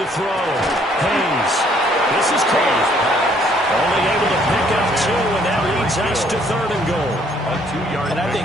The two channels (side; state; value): both; normal; correlation 0.64